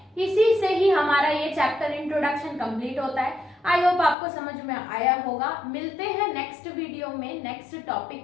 इसी से ही हमारा ये चैप्टर इंट्रोडक्शन कंप्लीट होता है। आई होप आपको समझ में आया होगा। मिलते हैं नेक्स्ट वीडियो में नेक्स्ट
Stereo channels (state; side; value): drops out; right; at 4.2 s